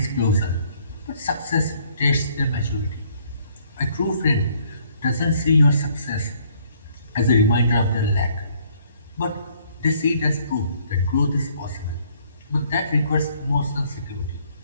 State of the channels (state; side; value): inverted; both; correlation -0.63